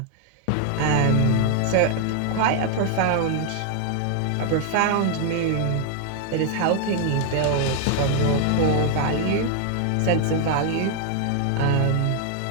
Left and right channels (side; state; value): both; different; correlation 0.00